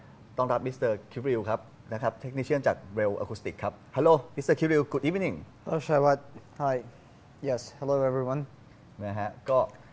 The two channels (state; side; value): identical; both; correlation 1.00